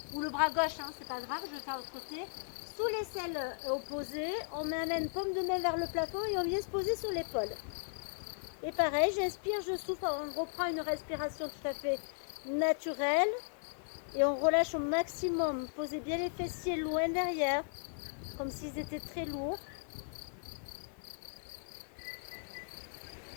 ou le bras gauche, hein, c'est pas grave, je vais faire de l'autre côté, sous l'aisselle opposée, on amène paume de main vers le plafond et on vient se poser sur l'épaule. Et pareil, j'inspire, je souffle, on reprend une respiration tout à fait naturelle, et on relâche au maximum, posez bien les fessiers loin derrière, comme s'ils étaient très lourds.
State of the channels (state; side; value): silent; right; digital silence